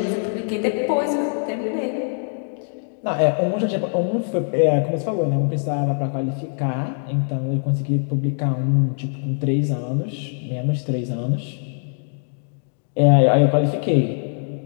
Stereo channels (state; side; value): silent; right; 64 dB below the other